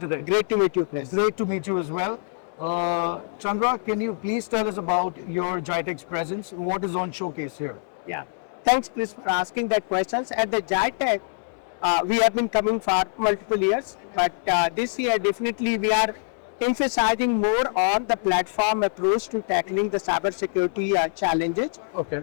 Great to meet you, Chris. Great to meet you as well. Chandra, can you please tell us about your GITEX presence? What is on showcase here? Yeah, thanks, Chris, for asking that questions. At the GITEX, we have been coming for multiple years, but this year definitely we are emphasizing more on the platform approach to tackling the cybersecurity challenges.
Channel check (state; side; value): silent; right; 62 dB below the other